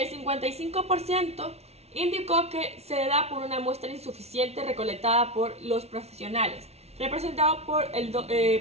55% indicó que se da por una muestra insuficiente recolectada por los profesionales, representado por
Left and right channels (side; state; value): left; late; 0.31 ms